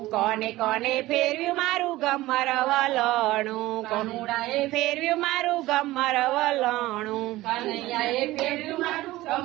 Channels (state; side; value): quieter; left; 17.6 dB